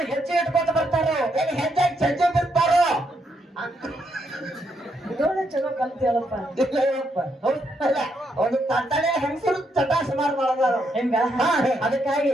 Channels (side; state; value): both; normal; correlation 0.77